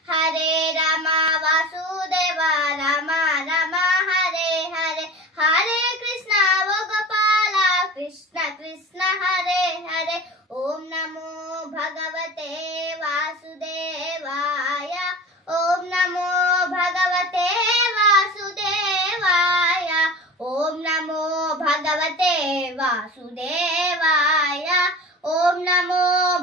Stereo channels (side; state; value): both; normal; correlation 0.35